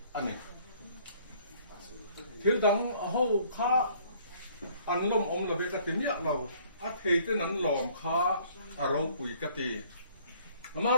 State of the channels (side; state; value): both; inverted; correlation -0.58